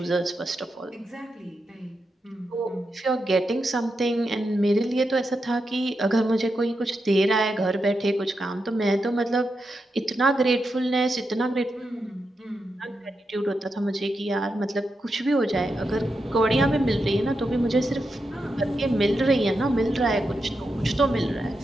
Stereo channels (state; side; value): normal; both; correlation 0.86